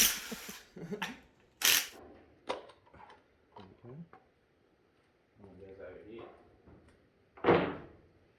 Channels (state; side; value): identical; both; correlation 1.00